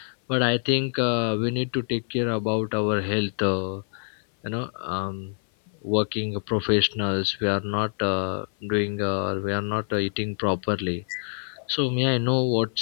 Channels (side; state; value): right; silent; 57 dB below the other